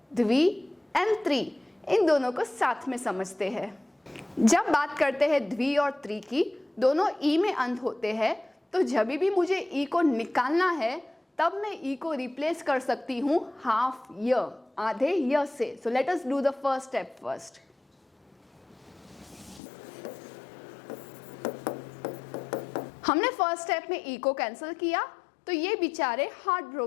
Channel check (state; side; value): drops out; right; at 19.6 s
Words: द्वि एंड त्रि, इन दोनों को साथ में समझते हैं। जब बात करते हैं द्वि और त्रि की, दोनों ई में अंत होते हैं, तो जब भी मुझे ई को निकालना है तब मैं ई को रिप्लेस कर सकती हूँ हाफ य, आधे य से। So let us do the first step first. हमने फर्स्ट स्टेप में ई को कैंसिल किया, तो ये बेचारे हार्ट